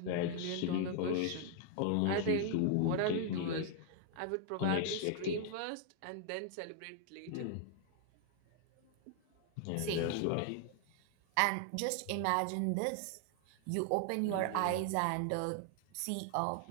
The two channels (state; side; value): different; both; correlation 0.00